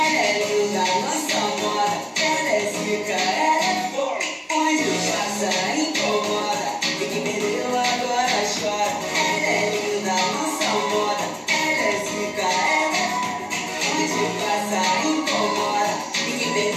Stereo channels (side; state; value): both; identical; correlation 1.00